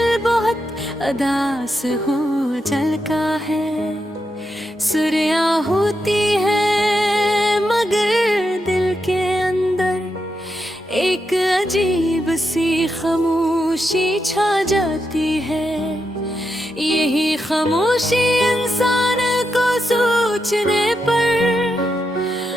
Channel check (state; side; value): normal; both; correlation 0.85